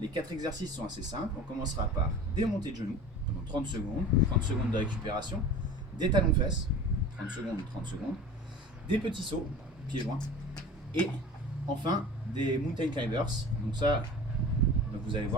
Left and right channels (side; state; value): both; normal; correlation 0.38